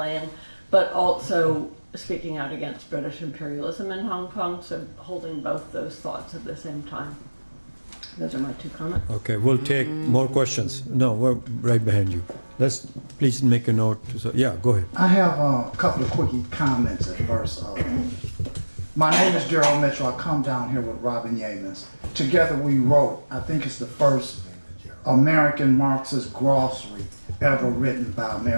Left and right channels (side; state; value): both; inverted; correlation -1.00